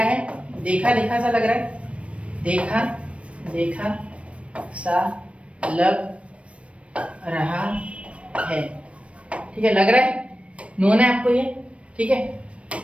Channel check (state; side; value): late; left; 0.062 ms